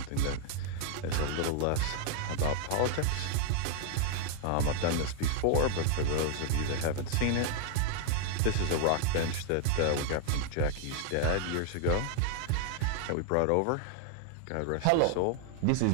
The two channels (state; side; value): different; both; correlation 0.00